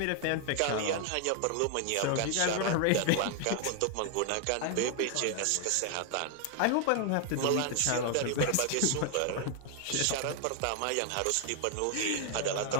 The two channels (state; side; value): different; both; correlation 0.00